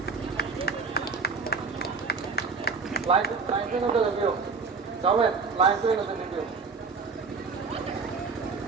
Line swing of the review. Comment, line swing of the review.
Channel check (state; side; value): quieter; left; 4.9 dB